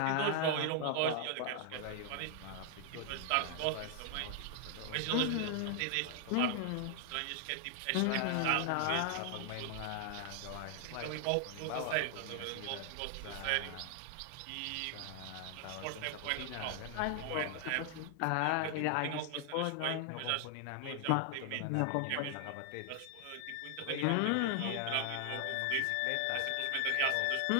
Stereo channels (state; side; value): different; both; correlation 0.00